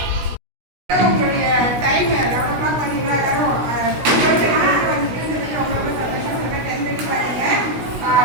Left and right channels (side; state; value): left; late; 16 ms